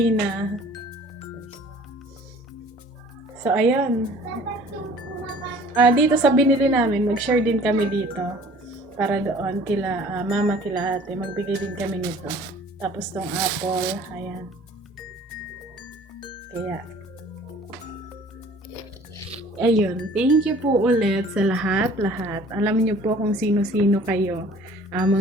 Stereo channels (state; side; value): normal; both; correlation 0.50